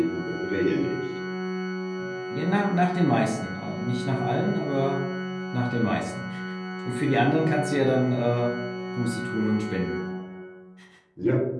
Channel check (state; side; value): identical; both; correlation 1.00